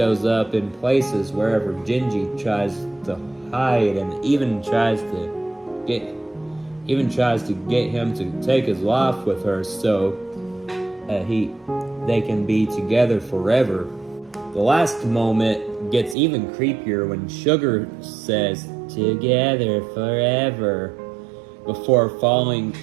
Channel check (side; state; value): left; drops out; at 16.2 s